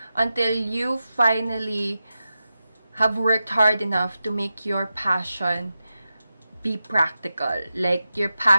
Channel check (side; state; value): both; inverted; correlation -0.91